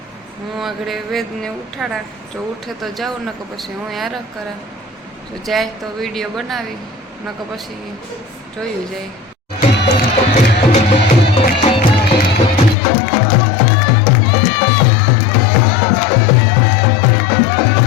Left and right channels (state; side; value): drops out; right; at 12.8 s